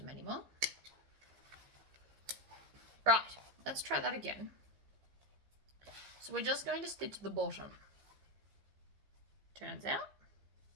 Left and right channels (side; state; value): left; late; 15 ms